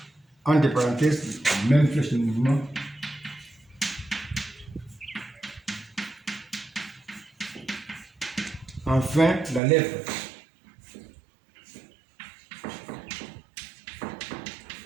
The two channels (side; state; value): left; drops out; at 9.6 s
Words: entre parenthèses, même flèche de mouvement, enfin la lèpre.